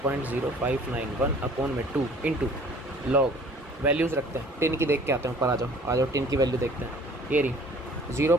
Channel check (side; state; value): both; normal; correlation 0.51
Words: अपोन में 2 इंटू लॉग, वैल्यूज़ रखते हैं, टिन की देख के आते हैं ऊपर, आ जाओ टिन की वैल्यू देखते हैं। ये रही